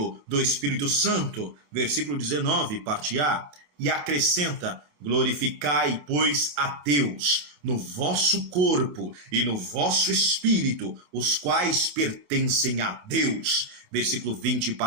do Espírito Santo? Versículo 19, parte A. E acrescenta, glorificai, pois, a Deus no vosso corpo e no vosso espírito, os quais pertencem a Deus. Versículo 20,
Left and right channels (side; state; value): left; late; 28 ms